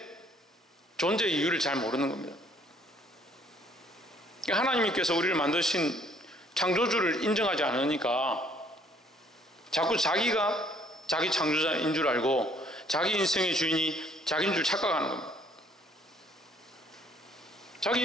존재의 이유를 잘 모르는 겁니다. 하나님께서 우리를 만드신 창조주를 인정하지 않으니까 자꾸 자기가 자기 창조자인 줄 알고 자기 인생의 주인이 자기인 줄 착각하는 겁니다. 자기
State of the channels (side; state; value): both; normal; correlation 0.62